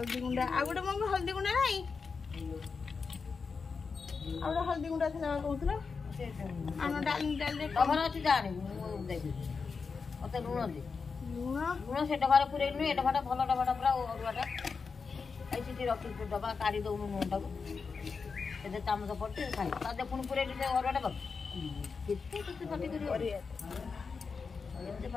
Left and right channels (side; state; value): right; quieter; 5.1 dB